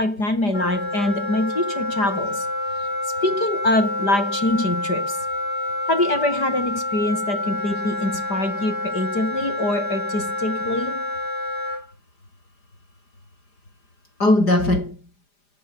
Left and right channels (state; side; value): late; right; 5.0 ms